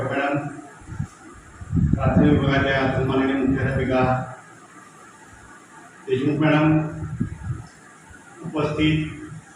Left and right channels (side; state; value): both; identical; correlation 1.00